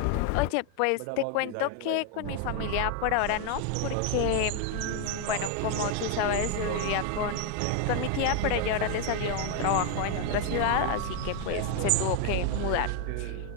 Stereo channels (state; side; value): different; both; correlation 0.01